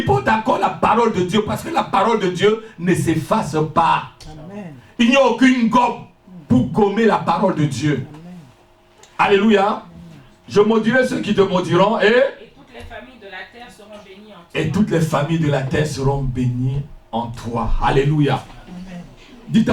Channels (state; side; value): identical; both; correlation 1.00